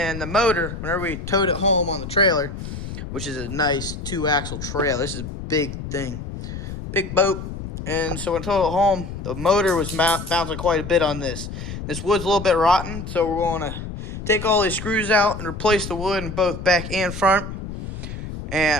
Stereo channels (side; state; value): left; noise; rumble, 8 dB below the sound